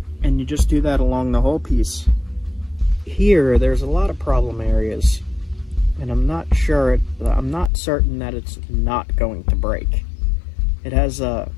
And you just do that along the whole piece. Here, there's a lot of problem areas, and I'm not certain that it's not going to break. It has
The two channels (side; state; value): right; drops out; at 7.7 s